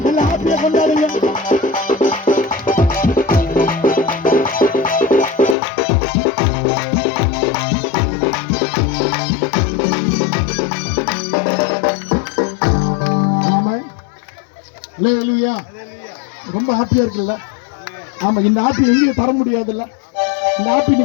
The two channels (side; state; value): right; drops out; at 5.6 s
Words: எல்லாம் ஹாப்பியா கொண்டாடுங்க. ரொம்ப ஹாப்பியா இருக்குல்ல? ஆமா, இந்த ஹாப்பி எங்கேயும் தர முடியாதுல்ல. இந்த ஹாப்பி நீ